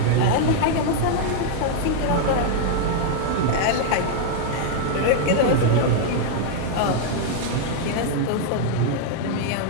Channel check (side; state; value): both; different; correlation 0.00